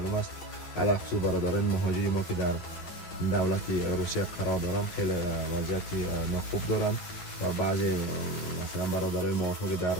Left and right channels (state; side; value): late; right; 11 ms